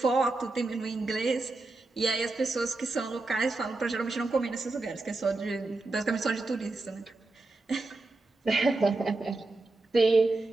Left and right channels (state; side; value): quieter; left; 3.2 dB